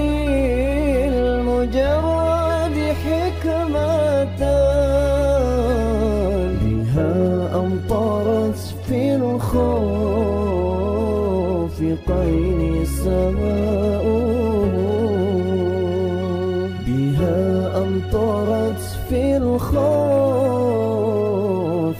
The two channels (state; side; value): identical; both; correlation 1.00